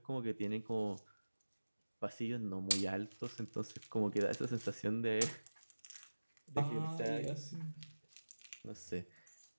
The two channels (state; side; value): inverted; both; correlation -1.00